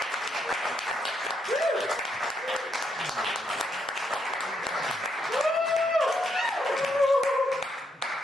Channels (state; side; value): normal; both; correlation 0.77